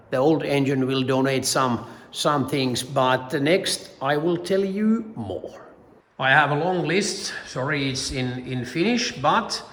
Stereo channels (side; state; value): both; identical; correlation 1.00